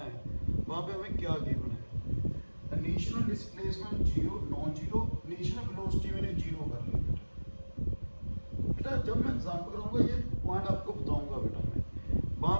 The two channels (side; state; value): both; inverted; correlation -1.00